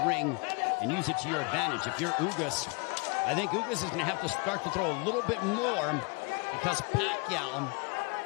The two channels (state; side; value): quieter; right; 31.1 dB